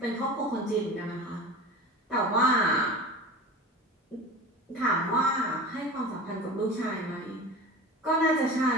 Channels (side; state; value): both; normal; correlation 0.34